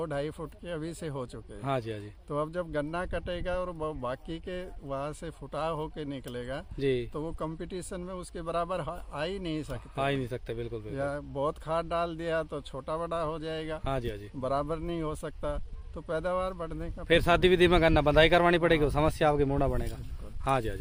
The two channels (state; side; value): identical; both; correlation 1.00